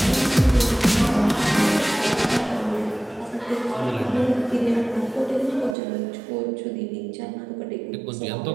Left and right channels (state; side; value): drops out; left; at 5.8 s